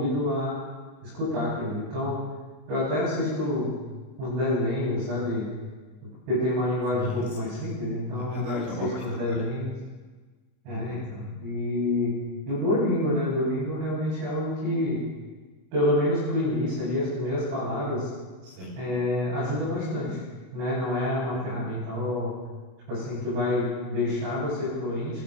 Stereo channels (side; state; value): left; late; 38 ms